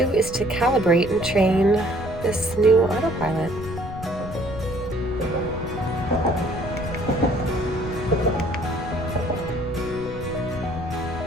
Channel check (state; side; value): noise; left; rumble, 11 dB below the sound